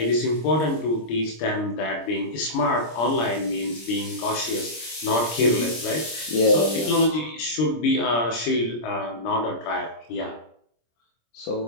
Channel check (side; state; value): right; late; 26 ms